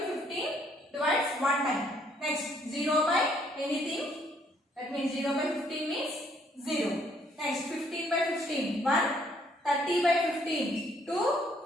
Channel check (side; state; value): both; normal; correlation 0.66